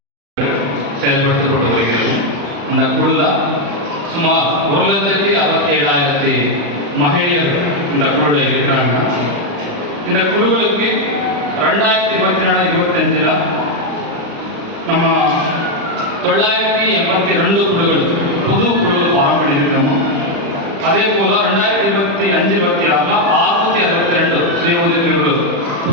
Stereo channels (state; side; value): late; left; 35 ms